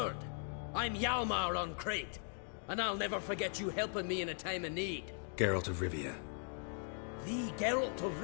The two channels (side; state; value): right; silent; 52 dB below the other